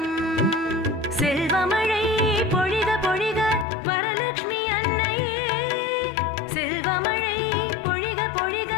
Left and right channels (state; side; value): drops out; right; at 3.7 s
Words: செல்வமழை பொழிக பொழிக வரலக்ஷ்மி அன்னையே, செல்வமழை பொழிக பொழிக